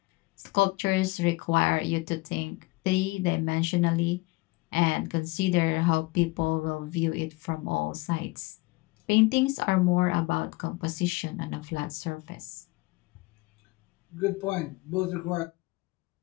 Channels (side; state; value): right; quieter; 23.8 dB